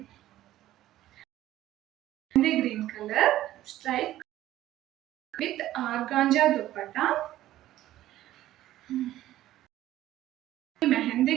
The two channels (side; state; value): left; quieter; 14.1 dB